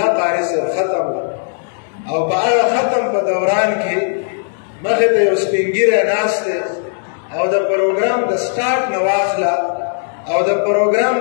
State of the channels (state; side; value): silent; right; digital silence